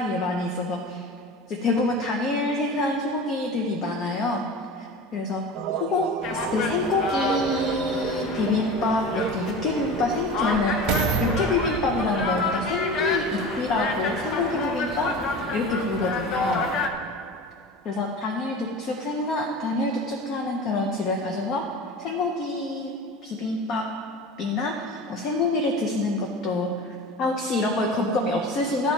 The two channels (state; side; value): normal; both; correlation 0.33